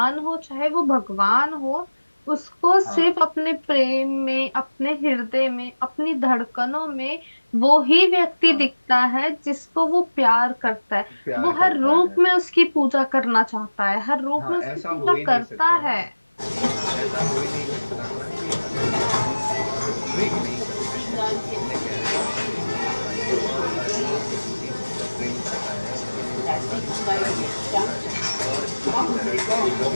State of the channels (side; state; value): both; inverted; correlation -1.00